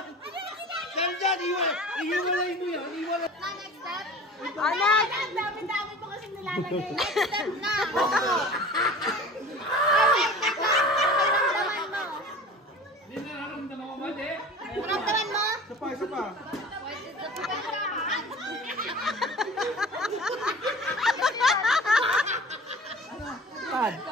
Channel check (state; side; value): normal; both; correlation 0.40